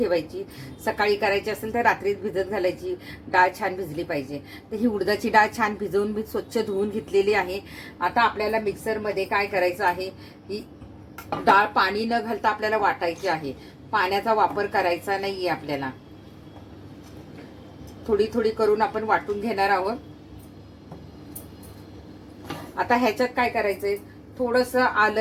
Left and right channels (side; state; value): both; identical; correlation 1.00